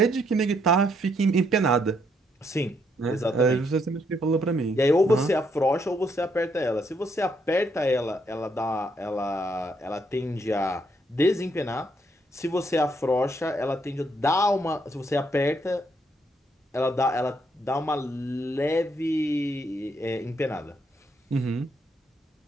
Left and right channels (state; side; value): normal; both; correlation 0.74